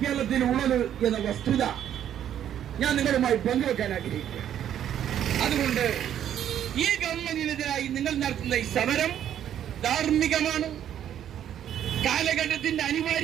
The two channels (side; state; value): left; quieter; 10.3 dB